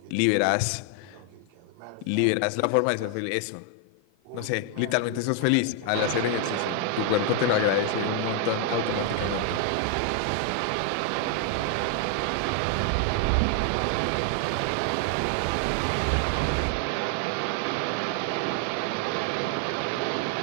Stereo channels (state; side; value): different; both; correlation 0.00